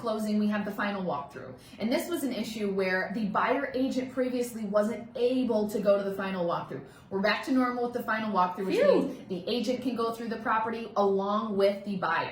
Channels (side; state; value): both; identical; correlation 1.00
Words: we have the final walkthrough. And this was an issue where the buyer agent previously wasn't able to go to the final walkthrough. We're back to normal with the final walkthrough, which means the agent can go through the property along with the